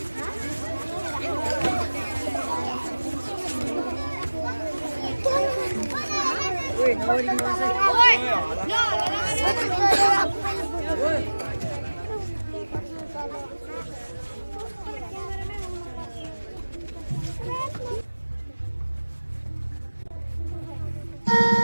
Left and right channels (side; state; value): both; inverted; correlation -1.00